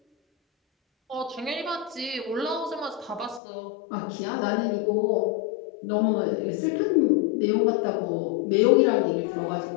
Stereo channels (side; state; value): right; drops out; at 3.4 s